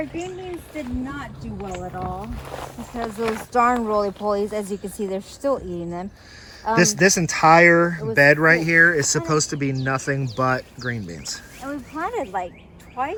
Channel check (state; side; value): identical; both; correlation 1.00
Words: green beans did not do well at all because those darn roly-polies, as you can see, they're still eating them. This entire bed right here is supposed to be nothing but green beans. And we planted like